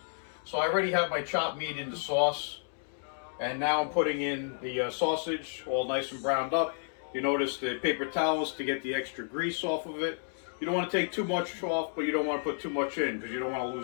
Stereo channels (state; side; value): silent; right; digital silence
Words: So I already have my chopped meat in the sauce, and now I'm putting in the sausage, all nice and browned up. You notice the paper towels to get the extra grease off of it. You don't want to take too much off, but you don't want to put too much in because you don't want to